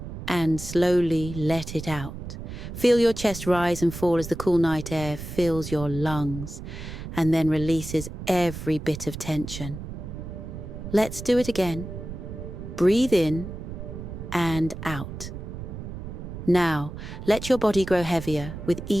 and slowly let it out. Feel your chest rise and fall as the cool night air fills your lungs and then releases every bit of tension. Let's do it again. Breathe in and out. Now, let your body grow heavier with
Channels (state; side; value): noise; right; rumble, 9 dB below the sound